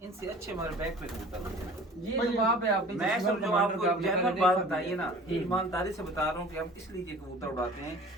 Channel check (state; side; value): normal; both; correlation 0.44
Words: इनसे अच्छे हमारे बैक पे कबूतर उड़ते हैं। ये तो बाप है आपके मैं शोर सब जो कमांडर आपको का, आपने जनरल पहले बात देखा बताइए भी ना, है। ईमानदारी से बता रहा हूँ कि हम इसलिए ये कबूतर उड़ाते हैं,